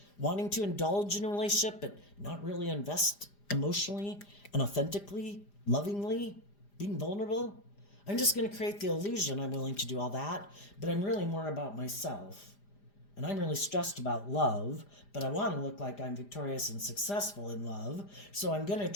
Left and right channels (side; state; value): right; late; 5.0 ms